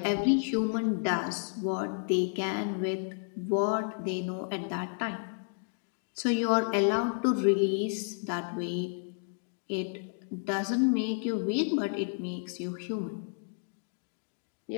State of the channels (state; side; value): silent; right; 57 dB below the other